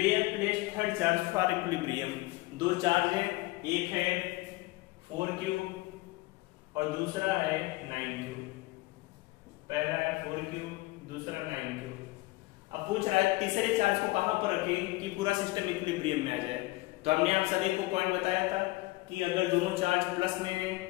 place third charge for equilibrium. 2 charge है, एक है 4q और दूसरा है 9q। पहला है 4q, दूसरा 9q। अब पूछ रहा है तीसरे चार्ज को कहां पर रखें कि पूरा सिस्टम इक्विलिब्रियम में आ जाए। तो हमने आप सभी को पॉइंट बताया था कि अगर दोनों चार्ज प्लस में है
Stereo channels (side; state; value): right; quieter; 20.9 dB